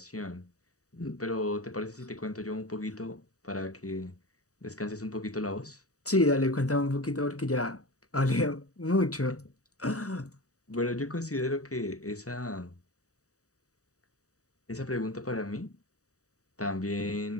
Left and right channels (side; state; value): right; late; 0.66 ms